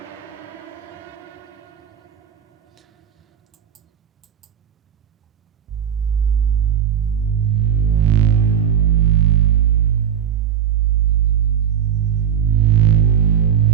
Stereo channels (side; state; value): left; quieter; 8.9 dB